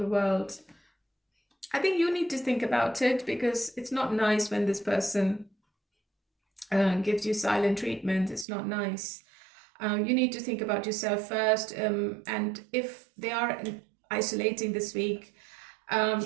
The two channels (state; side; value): drops out; left; at 8.5 s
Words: world. I think you need to think about it, because it's not nice when this person gives you silent treatment. It's not nice. You need to think about yourself first, and if they are isolating this week,